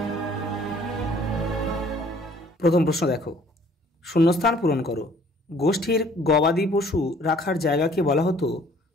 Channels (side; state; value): both; normal; correlation 0.57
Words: প্রথম প্রশ্ন দেখো, শূন্যস্থান পূরণ করো। গোষ্ঠীর গবাদি পশু রাখার জায়গাকে বলা হতো